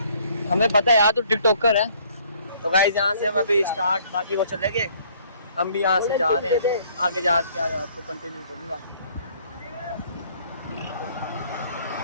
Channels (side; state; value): both; inverted; correlation -0.61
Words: हमें पता है यार तू टिकटॉकर है। तो गाइस यहाँ से हम अभी स्टार्ट, बाकी वो चलेंगे। हम भी यहाँ से जा रहे हैं, आगे जाके आपको कंटिन्यू करूँगा।